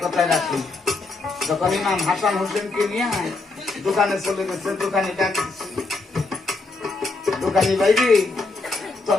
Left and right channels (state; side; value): quieter; right; 3.6 dB